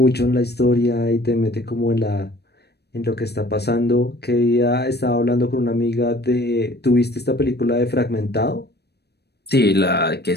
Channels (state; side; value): late; right; 0.48 ms